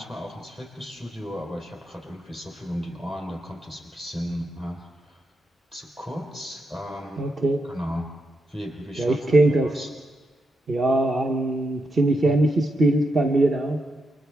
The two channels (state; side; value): normal; both; correlation 0.84